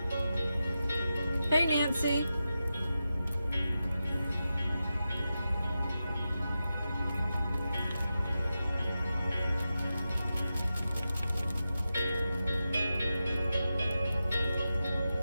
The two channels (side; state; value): both; inverted; correlation -0.91